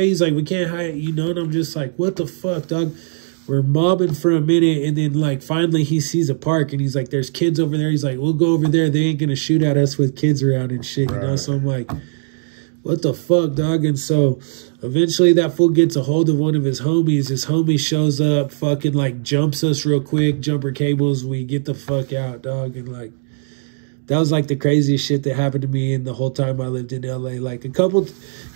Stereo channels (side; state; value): left; silent; 67 dB below the other